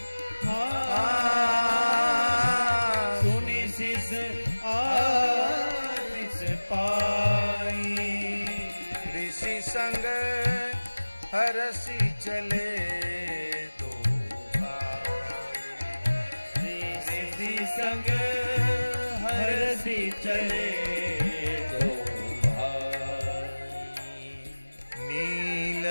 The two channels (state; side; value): inverted; both; correlation -1.00